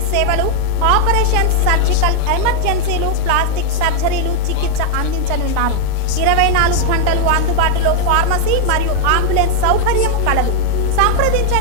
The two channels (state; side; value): different; both; correlation 0.00